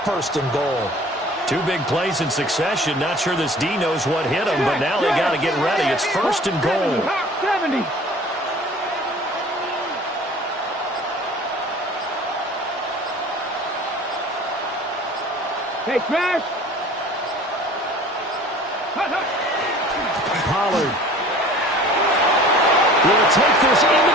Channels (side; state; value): both; normal; correlation 0.46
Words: 1st and goal. 2 big plays in succession. Not sure this D knows what hit him, but now they got to get ready. It's 1st and goal. 70. Hey, Smash. Pollard will take this into